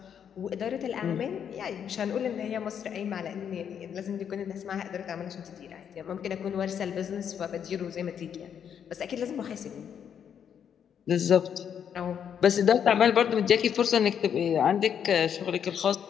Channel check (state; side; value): quieter; right; 8.3 dB